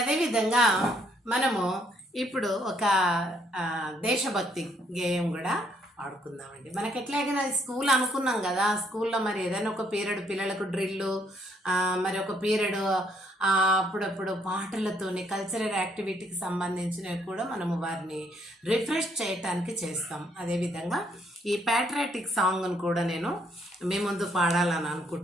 మనము ఇప్పుడు ఒక దేశభక్తి గేయం కూడా ఆడుకుందామండి. మనకి ఎట్లాగైనా స్కూల్ అనుకున్నాం కదా, స్కూల్లో మరి ఏదైనా ఒక పీరియడ్ పిల్లలకు డ్రిల్లు, మరి ఒక పీరియడ్ అప్పుడప్పుడు పాటలతోని కల్చరల్ యాక్టివిటీకి సంబంధించినవి కూడా మనము వారిని రిఫ్రెష్ చేయటానికి చేస్తాం. అదేవిధంగా ఈ ప్యాట్రియాటిక్ సాంగ్ను కూడా నేను మీ ముందు పాడాలని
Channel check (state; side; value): normal; both; correlation 0.69